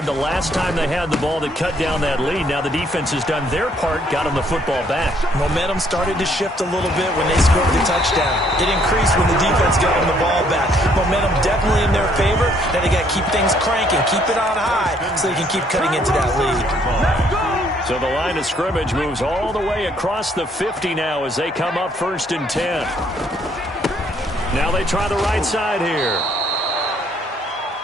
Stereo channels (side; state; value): both; normal; correlation 0.66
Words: the last time they had the ball that cut down that lead. Now the defense has done their part, got them the football back. Momentum started to shift a little bit when they scored the touchdown. It increased when the defense got them the ball back. Momentum definitely in their favor. Now they got to keep things cranking, keep it on high so they can keep cutting into that lead. So the line of scrimmage moves all the way across the 50 now as they come up 1st and 10. Now they try the right side here.